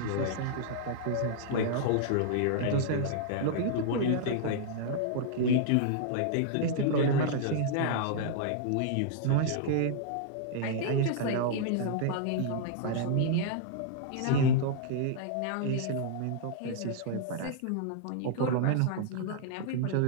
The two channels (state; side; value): different; both; correlation -0.01